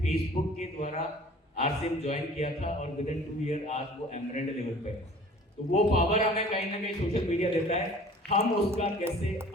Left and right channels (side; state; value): both; normal; correlation 0.48